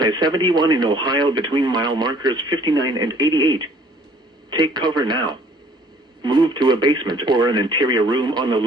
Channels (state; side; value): normal; both; correlation 0.56